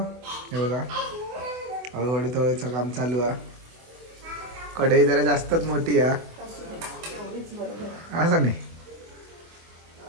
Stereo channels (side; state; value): left; late; 24 ms